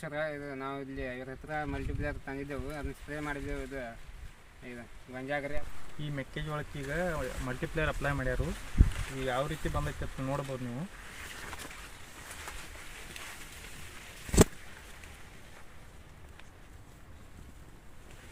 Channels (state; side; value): identical; both; correlation 1.00